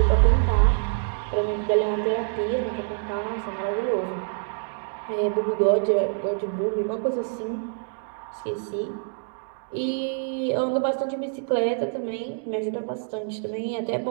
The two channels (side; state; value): left; silent; digital silence